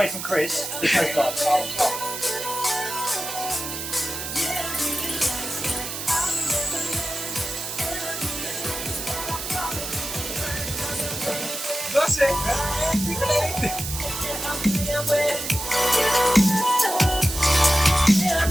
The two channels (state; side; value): noise; right; hiss, 6 dB below the sound